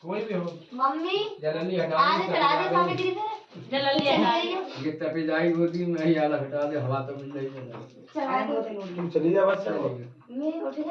कोई भी हो मम्मी जल्दी हटा आज चढ़ा दे सामने गिरी थे जल्दी हटा दे ये तपे जाएगी होती मैं ही आला हटा दे हवा तो मिल रही है चढ़ा दो तुम चली जा बस चलो मैं उठ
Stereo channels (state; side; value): identical; both; correlation 1.00